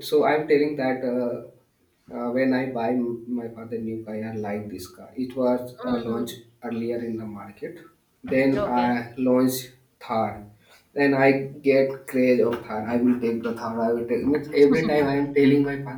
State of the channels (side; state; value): both; identical; correlation 1.00